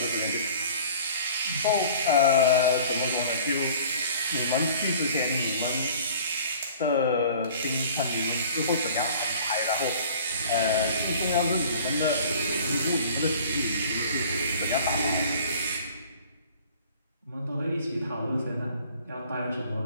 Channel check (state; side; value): inverted; both; correlation -0.48